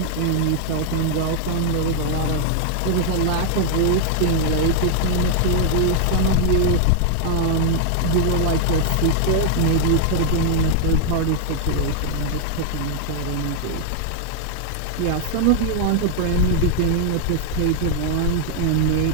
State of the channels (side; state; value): both; different; correlation 0.00